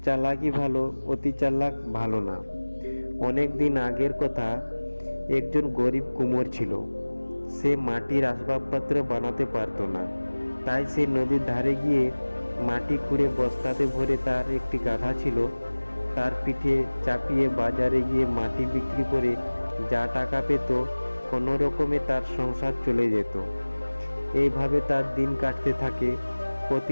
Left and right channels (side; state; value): both; inverted; correlation -1.00